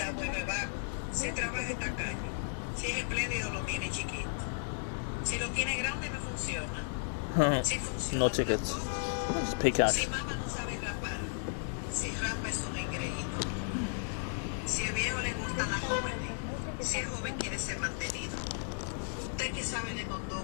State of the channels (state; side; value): silent; right; digital silence